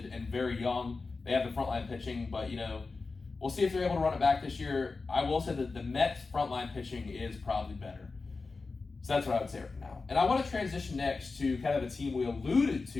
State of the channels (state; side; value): quieter; right; 4.0 dB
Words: and very young. They have the frontline pitching, but, we'll see if they're able to run it back this year. I will say that the Mets frontline pitching is probably better. So that's what I would say right now. And I want to transition next to kind of a team we alluded